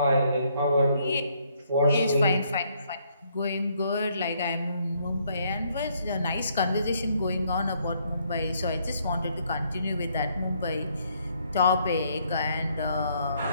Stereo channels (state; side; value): inverted; both; correlation -0.70